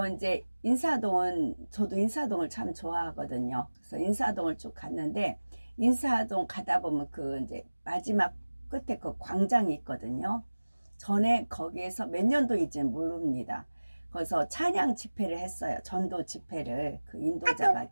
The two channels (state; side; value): inverted; both; correlation -1.00